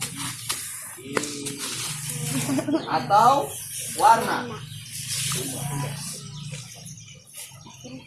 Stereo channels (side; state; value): both; identical; correlation 1.00